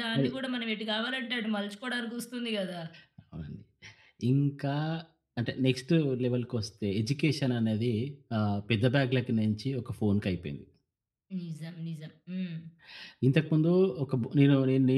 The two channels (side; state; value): both; identical; correlation 1.00